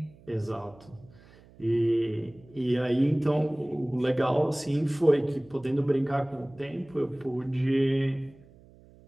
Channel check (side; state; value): right; noise; hum, 25 dB below the sound